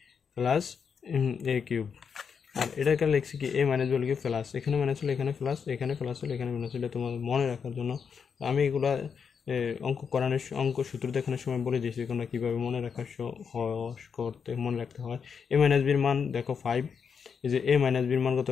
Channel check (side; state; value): right; quieter; 6.5 dB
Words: plus a cube, আর এটাকে লিখছি কি a minus b whole cube plus, এখানে মাইনাস হলে এখানে প্লাস, এখানে প্লাস হলে এখানে মাইনাস হলে, তোমাদের মনে রাখার জন্য আমি এগুলা অঙ্ক সূত্র দেখানোর সময় বলে দিয়েছি তোমরা কীভাবে মনে রাখার মনে রাখতে হয়। a মাইনাস বির মান দেখো 5, এই যে a মাইনাস বির মান কত,